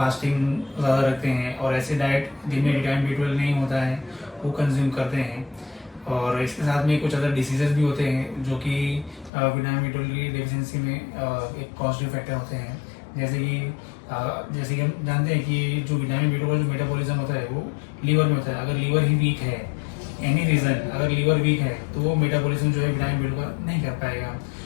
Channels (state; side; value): drops out; right; at 9.3 s